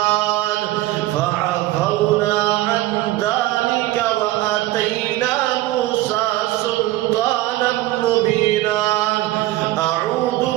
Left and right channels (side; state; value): left; quieter; 16.9 dB